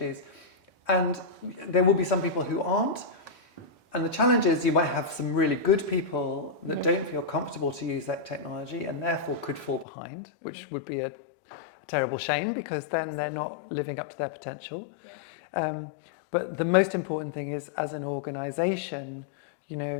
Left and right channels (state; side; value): drops out; right; at 9.9 s